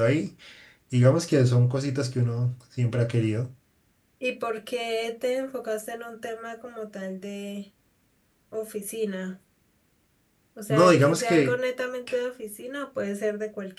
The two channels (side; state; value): both; identical; correlation 1.00